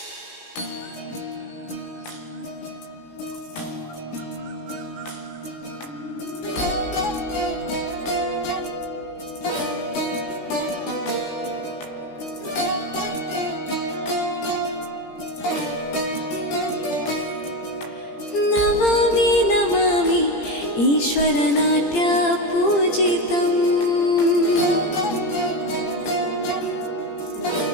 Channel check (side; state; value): right; late; 17 ms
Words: ನಮಾಮಿ ನಮಾಮಿ ಈಶ್ವರ ನಾಟ್ಯ ಪೂಜಿತಂ